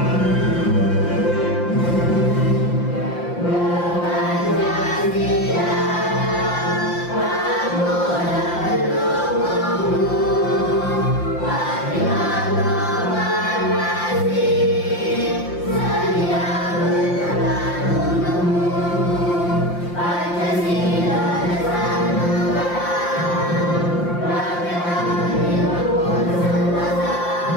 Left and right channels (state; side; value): late; right; 5.7 ms